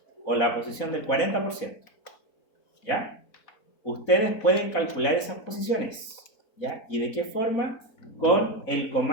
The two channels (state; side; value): late; right; 4.1 ms